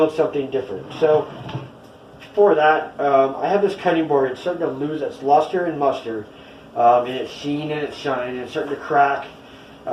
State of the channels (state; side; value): identical; both; correlation 1.00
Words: something different. So for that, I have this cutting board. It's starting to lose its luster and muster, and its sheen and its shine, and it's starting to crack.